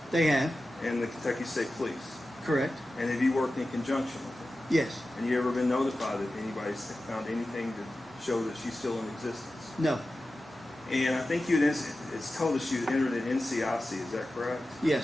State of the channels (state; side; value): normal; both; correlation 0.94